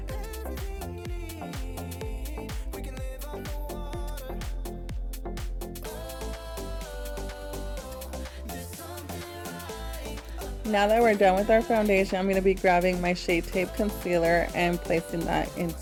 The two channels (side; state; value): both; identical; correlation 1.00